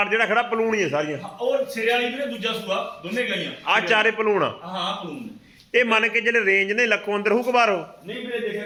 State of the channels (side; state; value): both; identical; correlation 1.00